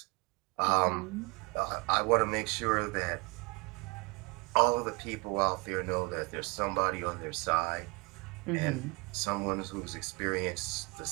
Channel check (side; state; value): left; quieter; 27.7 dB